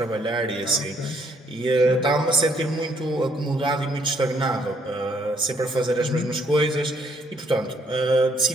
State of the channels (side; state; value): both; normal; correlation 0.67